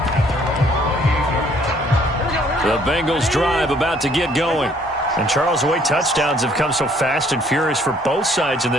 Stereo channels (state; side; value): normal; both; correlation 0.62